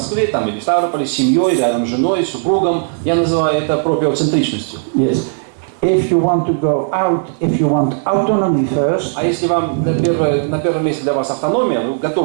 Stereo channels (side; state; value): left; silent; digital silence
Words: там или в Ставрополе, с семьей, рядом с женой, с супругом. Я называю это проприоцентричностью. Yes. If you want to go out, if you want autonomy first. А если вам на первом месте для вас автономия, вы